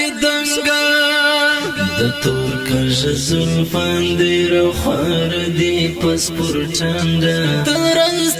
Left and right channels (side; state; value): both; identical; correlation 1.00